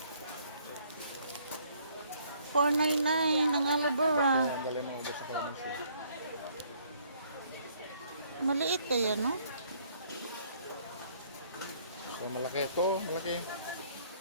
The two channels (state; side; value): inverted; both; correlation -0.64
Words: $4.99 ang aloe vera. Ang galing mo ulit sa pharmacy. Maliit kaya, no? So, malaki ito, malaki.